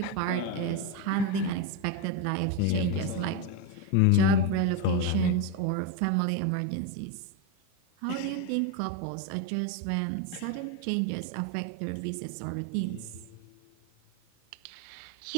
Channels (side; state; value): both; different; correlation 0.03